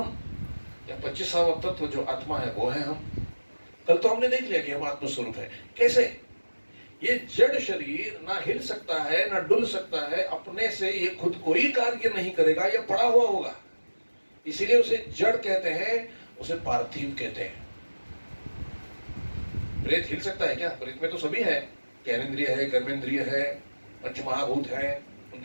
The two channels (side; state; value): both; inverted; correlation -1.00